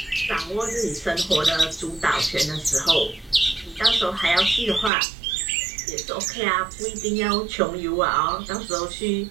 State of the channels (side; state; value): left; drops out; at 4.9 s